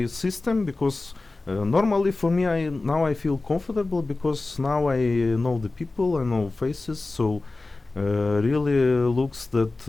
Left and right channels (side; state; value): right; quieter; 3.3 dB